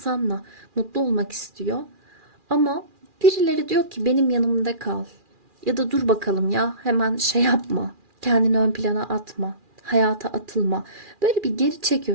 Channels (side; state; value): left; late; 2.4 ms